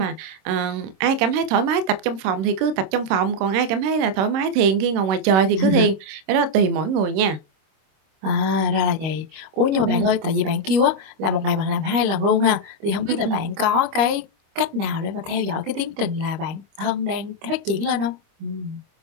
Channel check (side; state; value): left; late; 25 ms